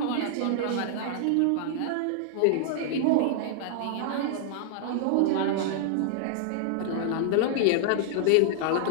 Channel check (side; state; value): both; different; correlation -0.01